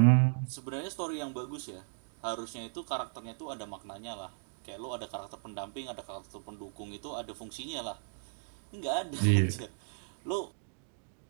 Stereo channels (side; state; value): left; silent; digital silence